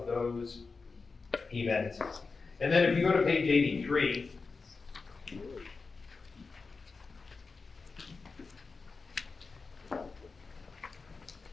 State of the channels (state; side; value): quieter; right; 4.4 dB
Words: those events. And then if you go to page 83,